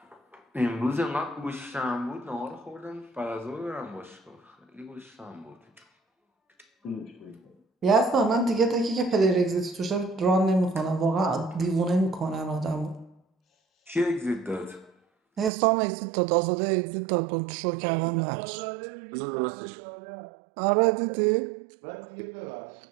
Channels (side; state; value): left; drops out; at 15.5 s